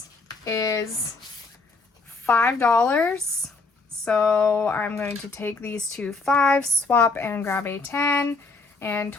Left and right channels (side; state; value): right; quieter; 3.8 dB